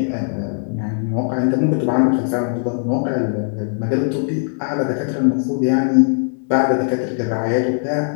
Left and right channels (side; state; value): right; silent; digital silence